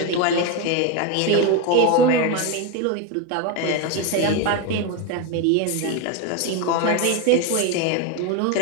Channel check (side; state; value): both; different; correlation 0.03